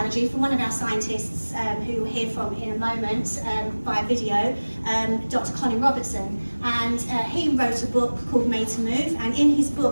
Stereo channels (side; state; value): both; inverted; correlation -1.00